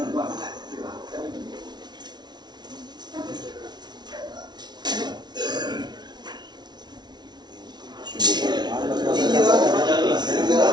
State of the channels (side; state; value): left; late; 0.20 ms